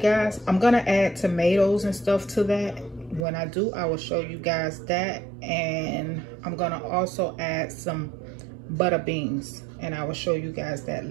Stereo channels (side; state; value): left; drops out; at 3.2 s